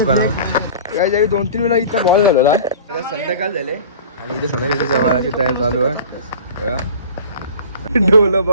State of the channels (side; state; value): both; inverted; correlation -0.40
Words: या जागी 2-3 वेळा इथं बॉल झालेला आता संध्याकाळ झाले आणि इथे संध्याकाळच्या जेवणाची तयारी चालू आहे डोलं